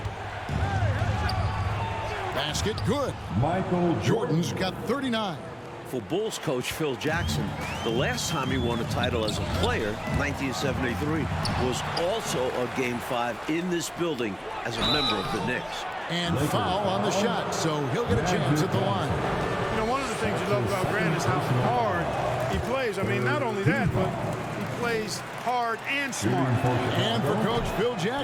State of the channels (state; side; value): identical; both; correlation 1.00